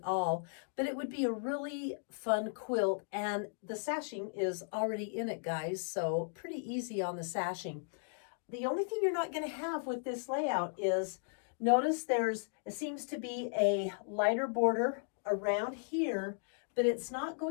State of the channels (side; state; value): right; silent; digital silence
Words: all, but it would be a really fun quilt. And the sashing is already in it, guys, so pretty easy on the sashing. The only thing you're not going to have with this layout is, notice it seems to be a lighter border around here, but it's not